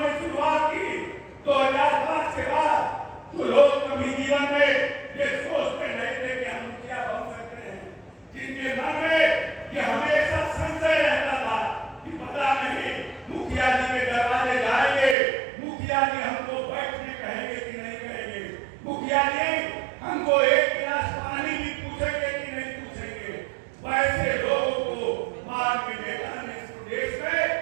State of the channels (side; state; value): left; drops out; at 15.2 s